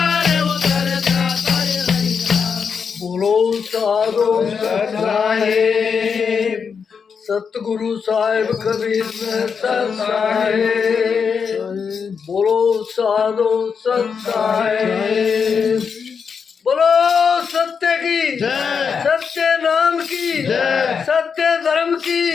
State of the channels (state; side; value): quieter; right; 6.1 dB